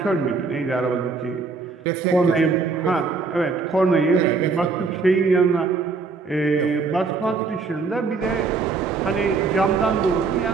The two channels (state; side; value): quieter; left; 4.5 dB